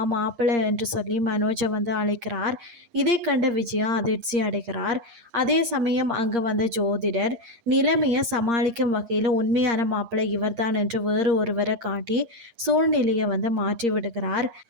மாப்பிள்ளை என்று சொல்லி மனோஜை அழைக்கிறார். இதை கண்ட விஜயா அதிர்ச்சி அடைகிறார். அதே சமயம் அங்கு வந்த ஜோதிடர் நிலைமையை சமாளிக்கும் வகையில் உண்மையான மாப்பிள்ளை இவர்தான் என்று வேறு ஒருவரை காட்டி சூழ்நிலையை மாற்றி விடுகிறார்.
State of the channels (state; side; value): late; left; 8.6 ms